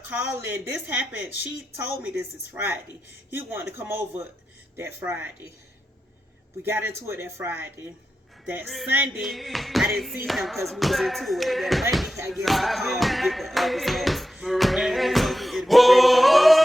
calling. This happened. She told me this is Friday. He wanted to come over that Friday. We got into it that Friday. That Sunday, I didn't see him because we was into it. That Monday, I guess he called to get the results.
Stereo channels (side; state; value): both; normal; correlation 0.90